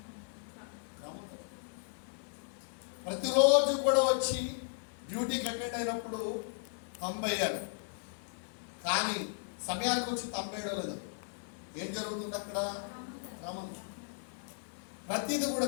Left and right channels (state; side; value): silent; right; digital silence